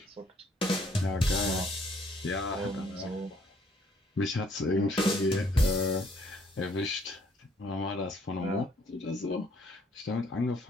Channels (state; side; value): normal; both; correlation 0.64